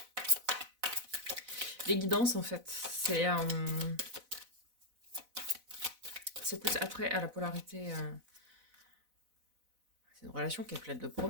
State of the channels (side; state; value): left; late; 4.0 ms